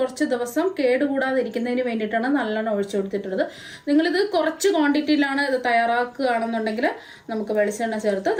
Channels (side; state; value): both; identical; correlation 1.00